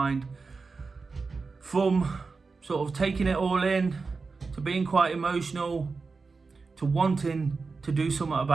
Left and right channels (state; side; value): quieter; left; 4.4 dB